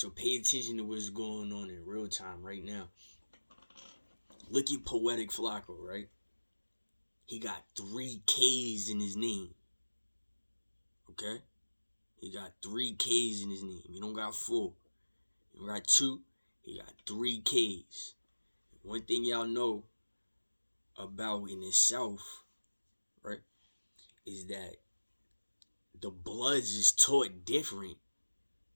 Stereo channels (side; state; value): both; inverted; correlation -1.00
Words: pay attention to what's going on in real time right now. Look at Poetic Flacco, right? He got 3 K's in his name. Okay? He got 3 K's in his name. He don't got 4. He don't got 2. He got 3 K's. One thing y'all know about in the South, right, is that the Bloods is taught different.